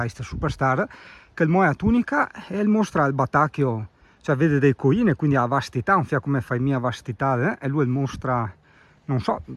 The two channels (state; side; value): identical; both; correlation 1.00